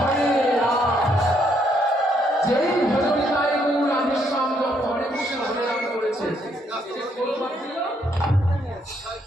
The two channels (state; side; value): normal; both; correlation 0.72